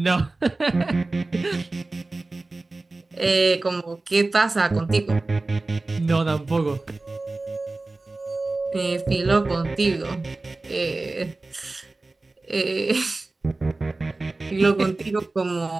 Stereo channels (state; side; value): quieter; left; 3.3 dB